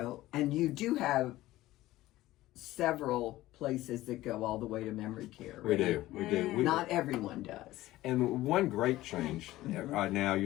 you do have several places that go all the way to memory care. Right? We do. Not everyone does. And one great change now,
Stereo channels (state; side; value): quieter; right; 16.4 dB